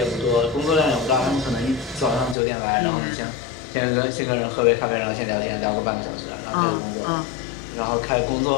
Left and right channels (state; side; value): drops out; right; at 2.4 s